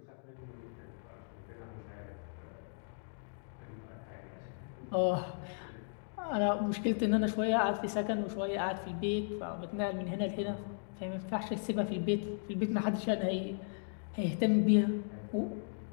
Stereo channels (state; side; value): silent; right; digital silence